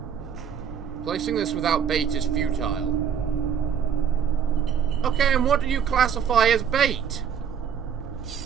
Placing this without bait is futile. Okay, and what do you classify as bait?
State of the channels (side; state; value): left; quieter; 7.9 dB